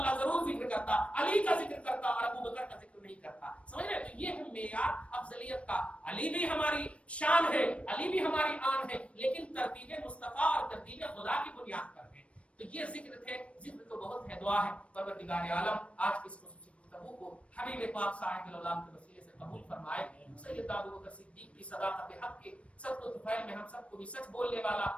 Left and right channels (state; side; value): late; right; 0.062 ms